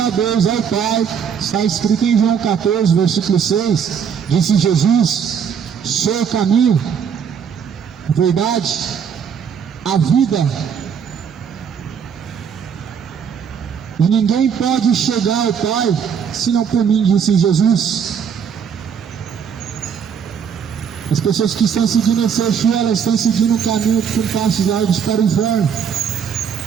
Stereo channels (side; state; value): left; quieter; 7.3 dB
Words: Deus, ao Pai, está escrito em João 14, versículo 6. Disse Jesus: sou o caminho, a verdade, a vida. E ninguém pode chegar ao Pai senão por mim, disse Jesus. As pessoas que estão seguindo esse Exu, elas estão seguindo um caminho com passos largos para o inferno.